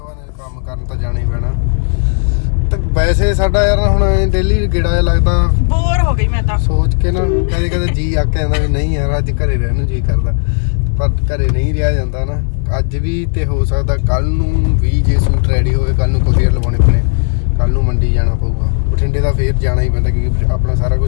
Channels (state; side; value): silent; right; 71 dB below the other